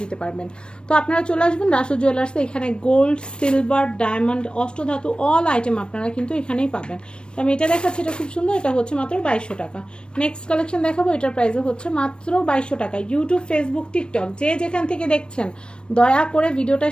দিতে পারবেন। তো আপনারা চলে আসবেন রাসু জুয়েলার্সে। এখানে গোল্ড, সিলভার, ডায়মন্ড, অষ্টধাতু অল আইটেম আপনারা কিন্তু এখানেই পাবেন। তো আমি এটা দেখাচ্ছি, এটা খুব সুন্দর। এটা হচ্ছে মাত্র 2200 টাকা। নেক্সট কালেকশন দেখাবো, এটার প্রাইসও হচ্ছে মাত্র 2200 টাকা। ইউটিউব, ফেসবুক, টিকটক যে যেখান থেকে দেখছেন দয়া করে ভিডিওটা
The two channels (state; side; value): late; right; 0.055 ms